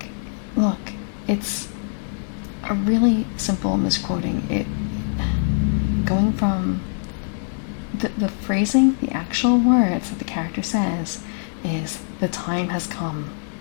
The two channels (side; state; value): right; silent; digital silence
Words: it's a really simple misquoting. It going from the phrasing, the actual words that the character says is "the time has come,"